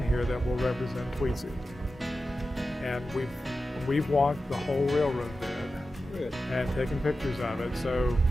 here that will represent Tweetsy. And we've walked the whole railroad bed and taken pictures of it, so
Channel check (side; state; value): both; normal; correlation 0.93